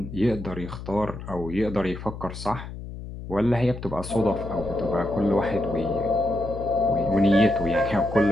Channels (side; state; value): left; noise; hum, 10 dB below the sound